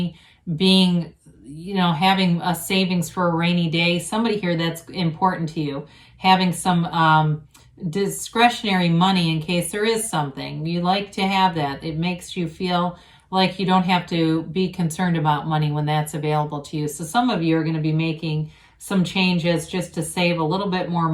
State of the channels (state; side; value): identical; both; correlation 1.00